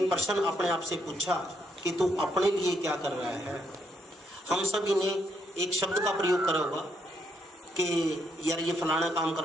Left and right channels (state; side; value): normal; both; correlation 0.75